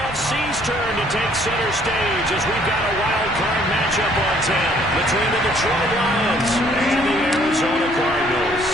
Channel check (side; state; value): both; normal; correlation 0.62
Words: turn to take center stage as we've got a wild card matchup on 10 between the Detroit Lions and the Arizona Cardinals.